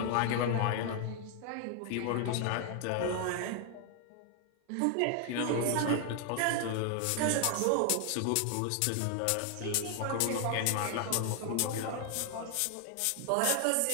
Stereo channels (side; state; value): both; different; correlation 0.00